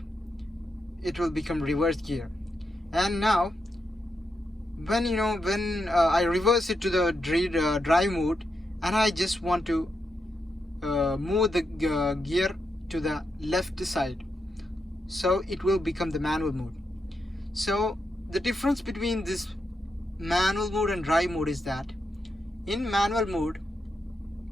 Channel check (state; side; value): normal; both; correlation 0.84